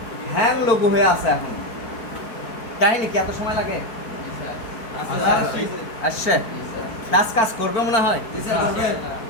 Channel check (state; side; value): late; right; 4.5 ms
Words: হ্যাং লোগো হয়ে আছে এখন, কাহিনী কি এত সময় লাগে? জি স্যার আসছে কাজ কাজ করবে মনে হয়, জি স্যার করবে